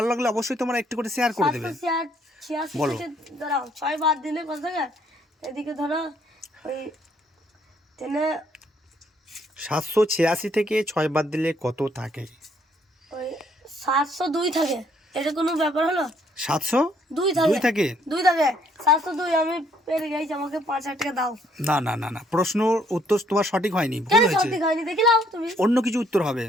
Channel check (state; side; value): normal; both; correlation 0.67